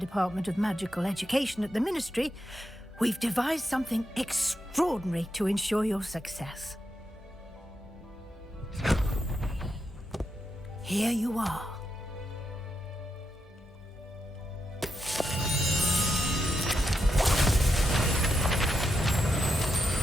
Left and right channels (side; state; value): both; normal; correlation 0.84